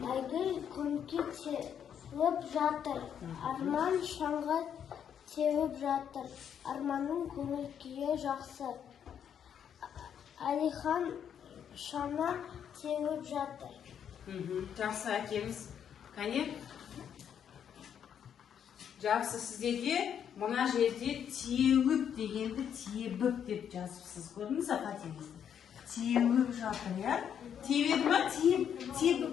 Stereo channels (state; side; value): quieter; right; 8.6 dB